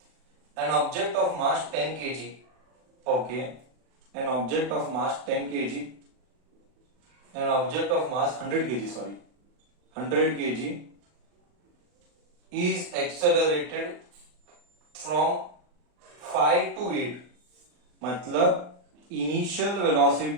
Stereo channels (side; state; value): left; late; 40 ms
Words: An object of mass 10 kg. Okay. An object of mass 10 kg. An object of mass 100 kg, sorry. 100 kg is accelerated from 5 to 8. मतलब initial